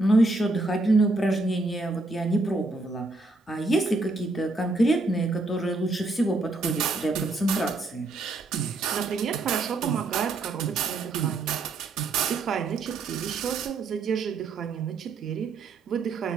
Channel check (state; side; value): quieter; left; 3.2 dB